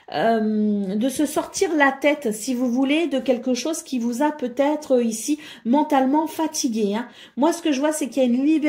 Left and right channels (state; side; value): identical; both; correlation 1.00